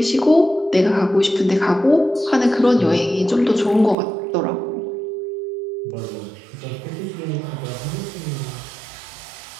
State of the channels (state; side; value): drops out; left; at 4.0 s